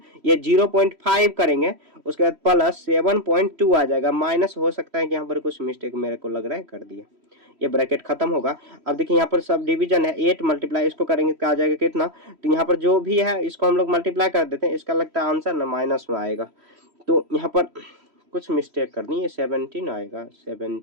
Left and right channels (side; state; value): left; late; 3.1 ms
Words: ये 0.5 करेंगे, उसके बाद प्लस 7.2 आ जाएगा, माइनस हो सकता है कि यहाँ पर कुछ मिस्टेक मेरे को लग रहा है कर दिया, ये ब्रैकेट खत्म होगा। अब देखिए यहाँ पर सब डिवीजन है, 8 मल्टीप्लाई इसको करेंगे क्या आ जाएगा कितना, तो यहाँ पर जो भी है इसको हम लोग मल्टीप्लाई कर देते हैं, इसका लगता है आंसर ना माइनस में आएगा, तो यहाँ पर कुछ मिस्टेक करनी है, 17 आएगा,